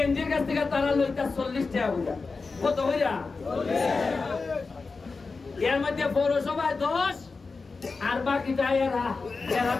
কাছ থেকে তারা লইতা 40 টাকা বুঝা কত হইয়া এর মধ্যে পৌরসভায় 10 আর বাকিটা এরা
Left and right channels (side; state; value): right; quieter; 4.2 dB